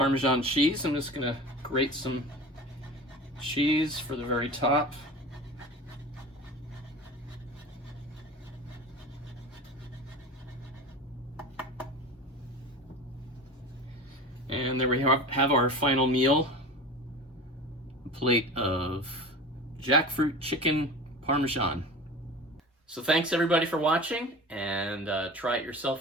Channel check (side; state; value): both; normal; correlation 0.35